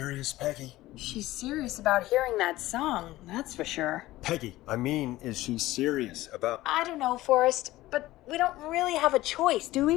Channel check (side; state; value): right; quieter; 16.9 dB